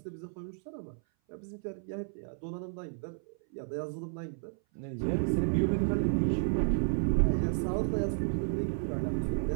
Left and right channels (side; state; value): left; silent; 56 dB below the other